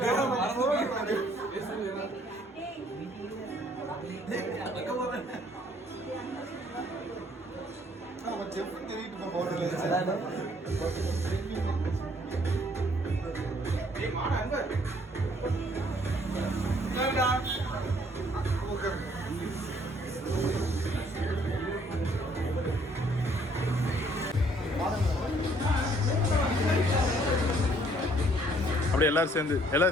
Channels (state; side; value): normal; both; correlation 0.63